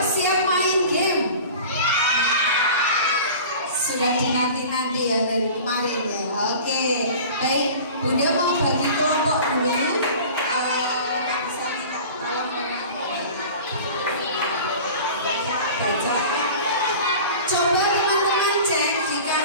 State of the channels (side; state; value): both; inverted; correlation -0.39